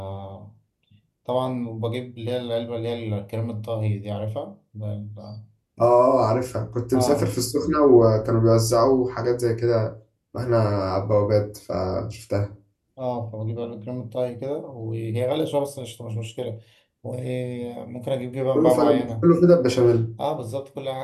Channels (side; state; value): both; identical; correlation 1.00